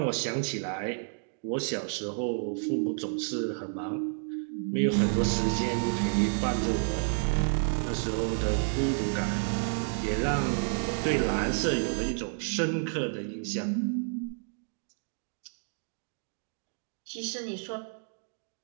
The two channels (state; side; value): silent; left; 57 dB below the other